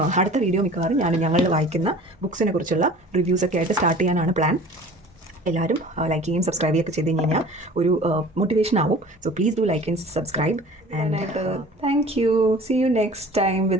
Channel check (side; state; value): both; normal; correlation 0.44